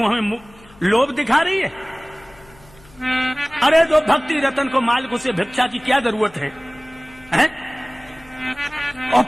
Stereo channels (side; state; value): left; noise; hum, 25 dB below the sound